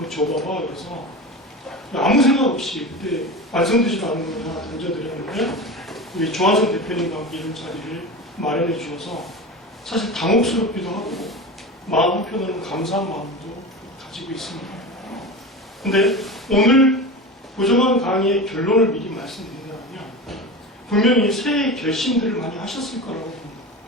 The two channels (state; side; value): normal; both; correlation 0.28